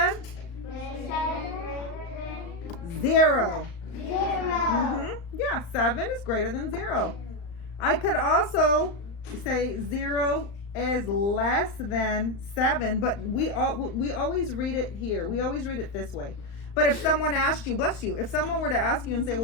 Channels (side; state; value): right; late; 35 ms